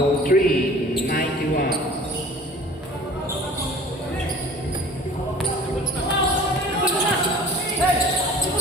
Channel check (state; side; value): normal; both; correlation 0.46